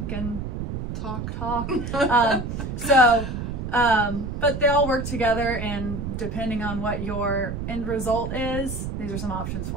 and talk. But they all work together, and depending on what your end result is, these are some options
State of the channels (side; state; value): right; noise; rumble, 5 dB below the sound